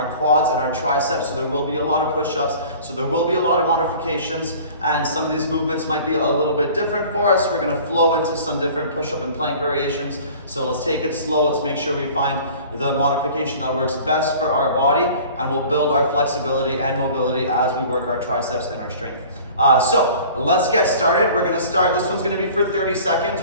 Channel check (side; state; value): both; inverted; correlation -0.45